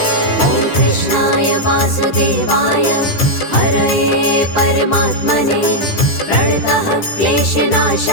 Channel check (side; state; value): right; late; 10 ms